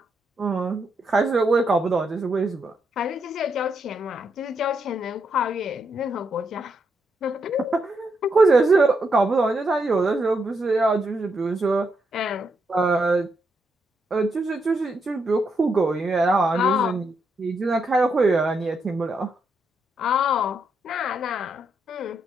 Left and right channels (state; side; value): normal; both; correlation 0.80